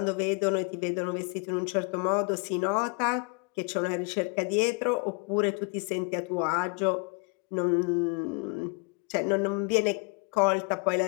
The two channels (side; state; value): right; quieter; 34.3 dB